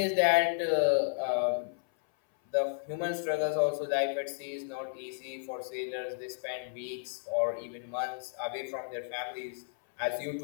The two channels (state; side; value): silent; right; 56 dB below the other